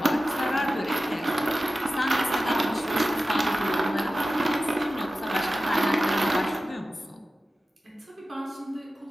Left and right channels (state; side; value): normal; both; correlation 0.94